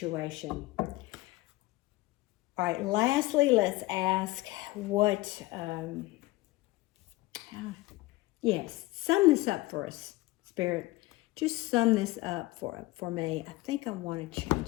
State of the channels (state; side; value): quieter; right; 19.7 dB